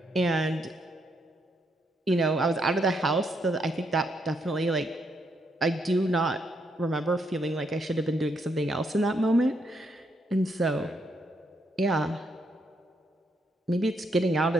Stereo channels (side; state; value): both; normal; correlation 0.76